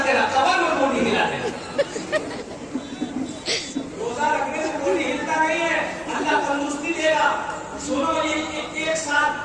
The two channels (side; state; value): both; identical; correlation 1.00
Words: तेरा कबर में बॉडी हिला देगा। रोजा रखने से बॉडी हिलता नहीं है, अल्लाह तंदुरुस्ती देगा। सुनो, ये एक साल